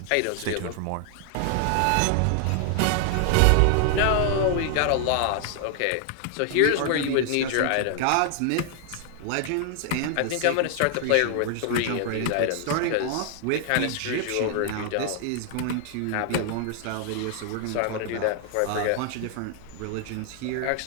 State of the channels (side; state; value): both; different; correlation 0.00